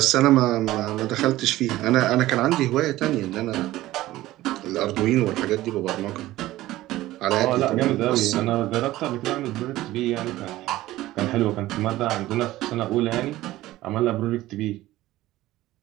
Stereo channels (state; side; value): quieter; left; 16.3 dB